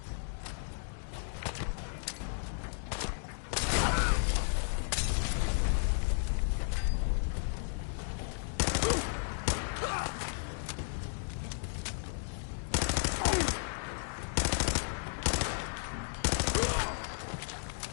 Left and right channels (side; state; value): right; silent; digital silence